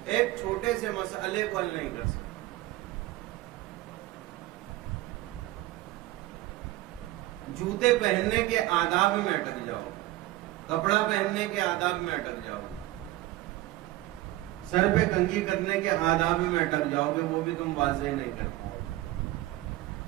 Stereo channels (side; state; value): left; quieter; 17.0 dB